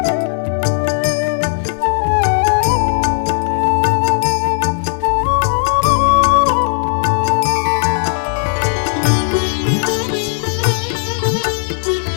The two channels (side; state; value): right; silent; digital silence